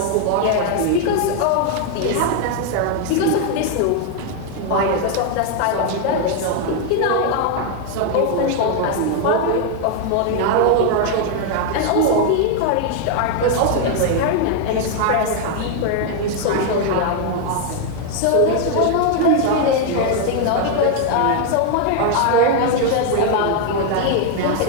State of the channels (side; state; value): both; different; correlation 0.00